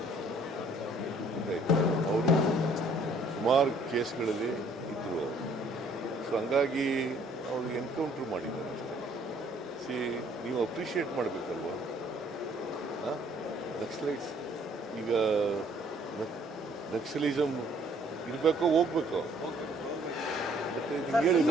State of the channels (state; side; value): normal; both; correlation 0.60